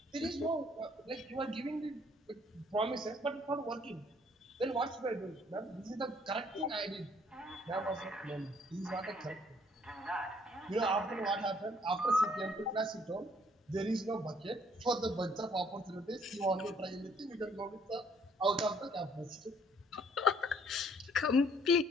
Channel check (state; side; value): normal; both; correlation 0.63